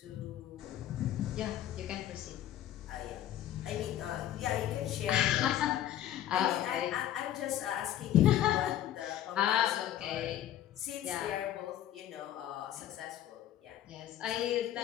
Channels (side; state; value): right; quieter; 12.0 dB